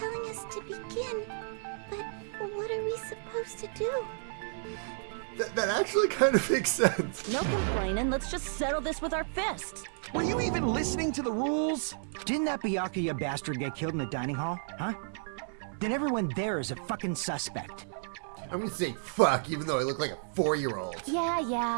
us to begin, but what are we supposed to do? That actually kind of makes sense. No complaining, let's just settle this with our fists. Were you even listening to the rules? Didn't that Byakuya bastard get killed in the dining hall, huh? Then everyone there is a fucking suspect. I'm gonna say fuck, even though I look like a 4-year-old.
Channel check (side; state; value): left; silent; digital silence